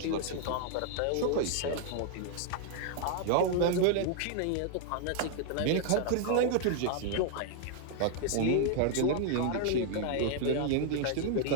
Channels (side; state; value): both; different; correlation 0.00